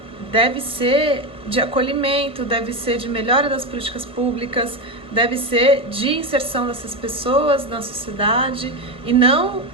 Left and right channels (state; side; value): late; right; 1.5 ms